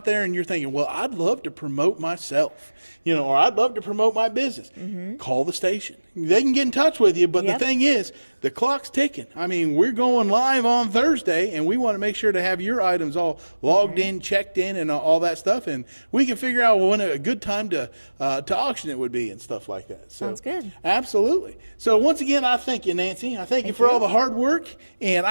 there and you're thinking, well, I'd love to promote myself, or I'd love to promote my business, call the station. They can get in touch with you, but the thing is, the clock's ticking. I mean, we're going live on Thursday, and we want to make sure to have your items all logged in, checked in, and all that stuff, and we can figure out when a good time to auction it would be and stuff like that. So, Sounds good. Absolutely. So once again, I thank you, Nancy. I thank you for all the hard work, and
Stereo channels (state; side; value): inverted; both; correlation -1.00